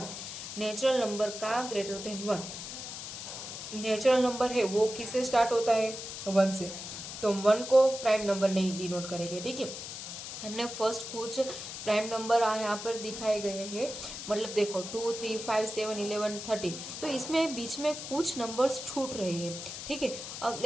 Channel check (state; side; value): noise; left; hiss, 8 dB below the sound